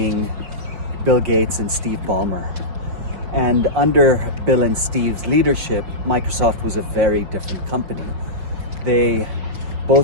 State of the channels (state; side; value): late; left; 5.1 ms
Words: Bill Gates and Steve Ballmer. And under Bill and Steve's leadership, Microsoft was a very different company.